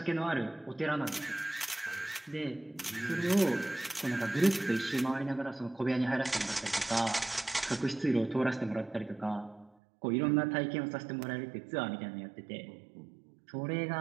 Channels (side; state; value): left; drops out; at 9.7 s